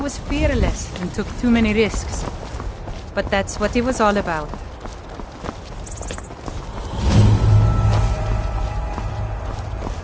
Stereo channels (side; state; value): both; identical; correlation 1.00